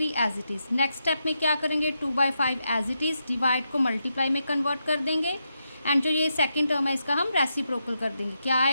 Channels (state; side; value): inverted; both; correlation -0.84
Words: as it is. Next step में क्या करेंगे, 2/5 एज इट इज़, डिवाइड को मल्टीप्लाई में कन्वर्ट कर देंगे एंड जो ये सेकंड टर्म है इसका हम रेसिप्रोकल कर देंगे। क्या